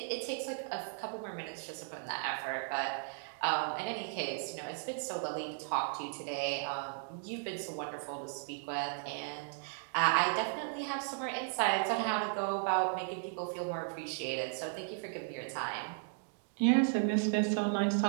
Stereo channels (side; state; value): left; silent; digital silence